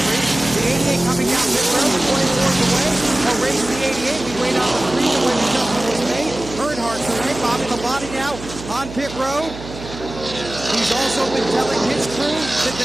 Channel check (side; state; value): right; noise; hum, 13 dB below the sound